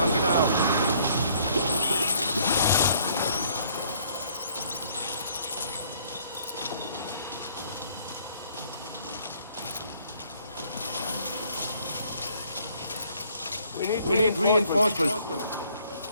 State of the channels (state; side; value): inverted; both; correlation -0.62